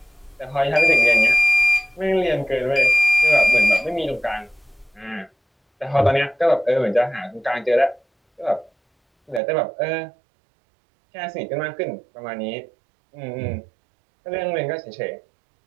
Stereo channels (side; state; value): left; drops out; at 9.4 s